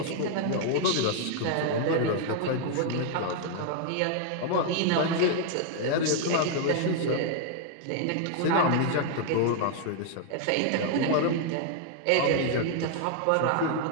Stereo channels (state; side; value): different; both; correlation 0.00